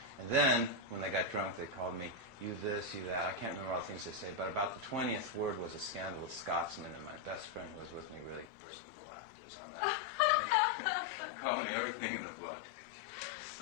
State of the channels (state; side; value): drops out; right; at 8.5 s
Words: And then, when they got drunk, they called me, you this, you that. I can't remember all the things they say, but about the 20th word was a scandalous Scotsman, and my best friend who was with me really burst into laughter on that. Called me everything in the book.